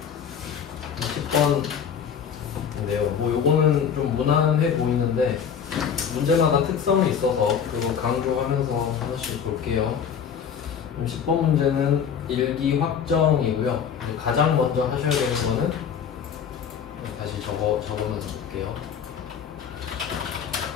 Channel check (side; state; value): right; quieter; 7.5 dB